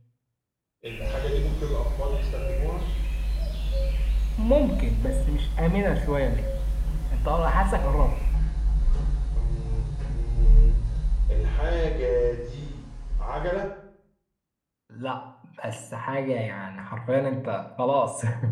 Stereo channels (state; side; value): identical; both; correlation 1.00